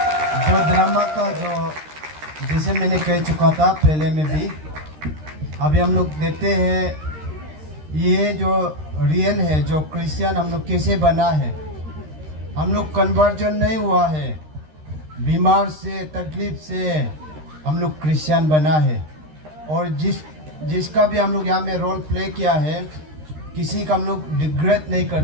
जो drama का जो जैसे मैंने कह चुका था पहले में भी अभी हम लोग देखते हैं ये जो रियल है जो क्रिश्चियन हम लोग कैसे बना है हम लोग कन्वर्जन नहीं हुआ है बीमार से तकलीफ से हम लोग क्रिश्चियन बना है और जिसका भी हम लोग यहाँ में रोल प्ले किया है किसी का हम लोग डिग्रेड नहीं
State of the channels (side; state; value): left; late; 13 ms